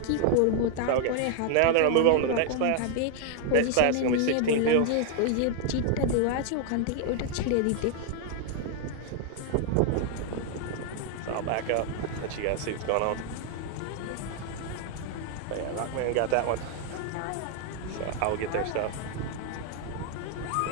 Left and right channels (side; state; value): both; different; correlation 0.00